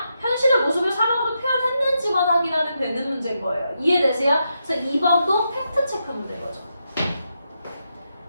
현실의 모습을 사막으로 표현했는지만 확인하면 되는 문제인 거예요. 이해되세요? 그래서 2번도 팩트체크 문제인 거죠.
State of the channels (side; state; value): both; inverted; correlation -0.84